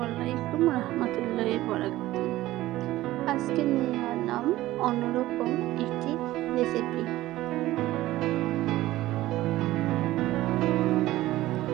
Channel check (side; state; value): left; quieter; 16.2 dB